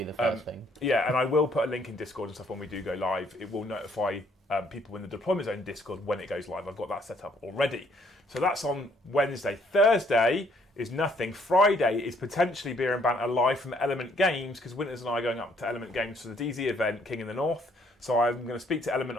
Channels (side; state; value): both; normal; correlation 0.66